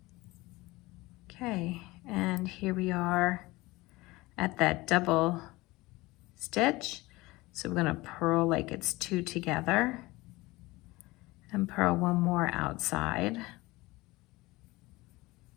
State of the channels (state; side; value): quieter; right; 20.9 dB